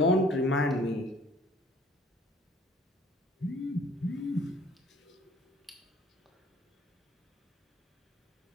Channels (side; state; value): both; normal; correlation 0.55